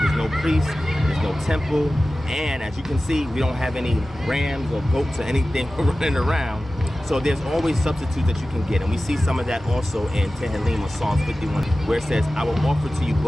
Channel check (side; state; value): both; normal; correlation 0.95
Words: There's no priest, there's no temple, and as you can see, we don't have any rams or goats or anything running around. So there's always substitutes that you can get, and we see some of that also in Tehillim or Psalms 51, where it says, I will offer to you